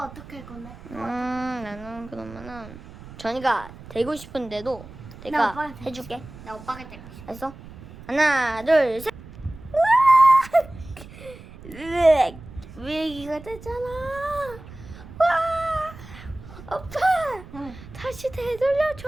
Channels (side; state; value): right; noise; rumble, 17 dB below the sound